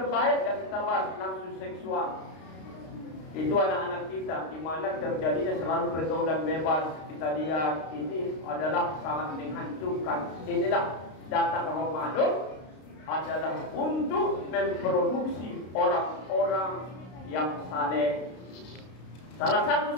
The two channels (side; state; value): right; late; 32 ms